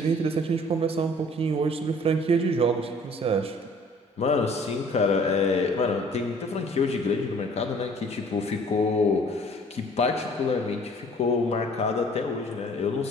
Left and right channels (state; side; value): normal; both; correlation 0.54